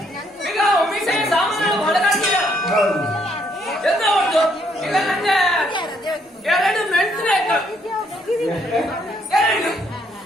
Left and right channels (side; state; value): both; normal; correlation 0.70